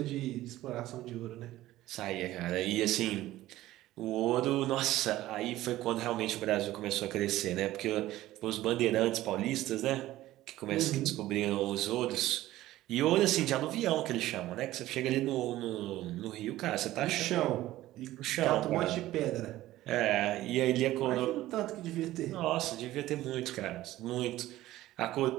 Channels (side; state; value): left; quieter; 15.5 dB